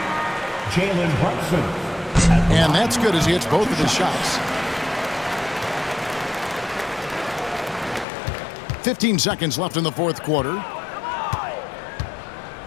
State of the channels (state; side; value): drops out; right; at 8.1 s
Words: Jalen Brunson. And that's good as he hits both of his shots. 15 seconds left in the fourth quarter.